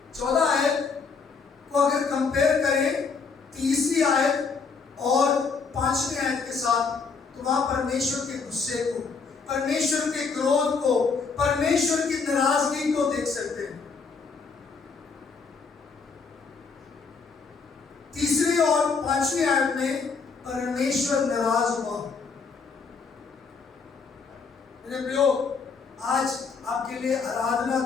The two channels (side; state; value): right; quieter; 5.0 dB